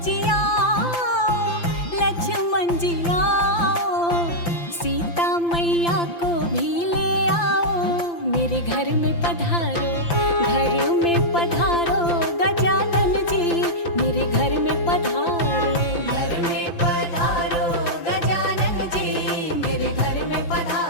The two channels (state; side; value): late; right; 5.8 ms